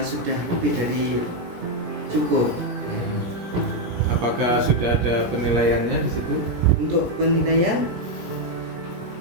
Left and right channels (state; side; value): late; left; 17 ms